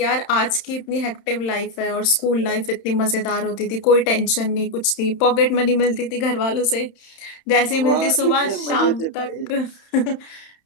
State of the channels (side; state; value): right; late; 31 ms